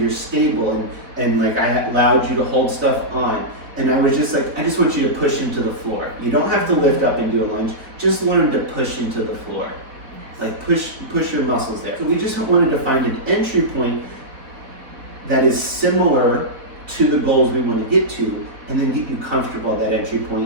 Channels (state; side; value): late; left; 4.1 ms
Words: stable, and I allowed you to hold stuff on. And I was just like, I just want you to push into the floor. You don't have to lift up and do a lunge, just learn to push into the floor. Push your muscles there. So we just wanted to find an entry point that is similar to the goals we want to get to, and then get you comfortable at that entry